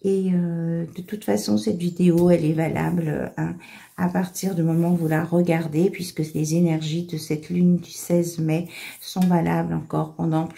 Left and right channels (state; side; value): identical; both; correlation 1.00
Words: Et de toute façon, cette vidéo, elle est valable hein, à partir du moment où vous la regardez, puisque les énergies de cette lune du 16 mai sont valables encore pendant